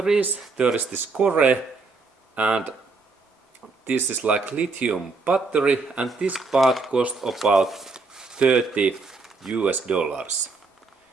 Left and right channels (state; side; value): quieter; left; 4.0 dB